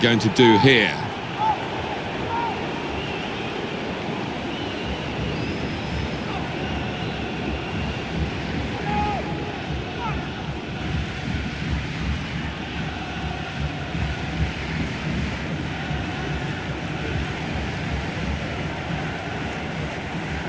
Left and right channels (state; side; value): identical; both; correlation 1.00